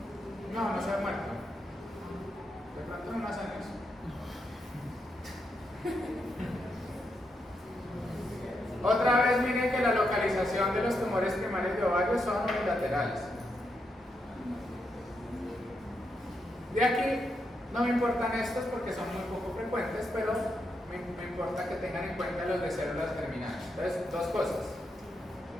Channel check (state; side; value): normal; both; correlation 0.82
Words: No se ha muerto. De pronto no más años. Otra vez miren que la localización de los tumores primarios de ovario son unilaterales. De aquí no me importan estos porque son muy poco frecuentes, pero me importa que tengan en cuenta los de células germinales. Entonces, dos cosas.